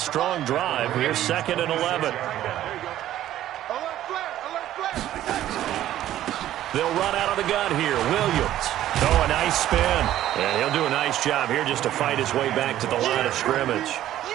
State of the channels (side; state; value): left; quieter; 12.9 dB